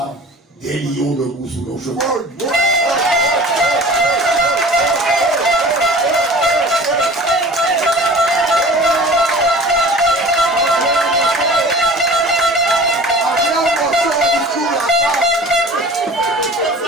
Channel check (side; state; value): both; normal; correlation 0.42